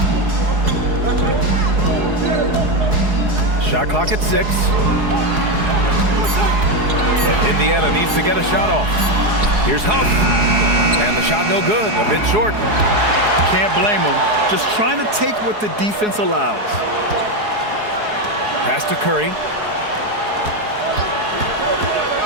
Shot clock at 6. Indiana needs to get a shot off. Here's Huff, and the shot no good, a bit short. Can't blame him. Just trying to take what the defense allows. Pass to Curry.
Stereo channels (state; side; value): late; left; 4.7 ms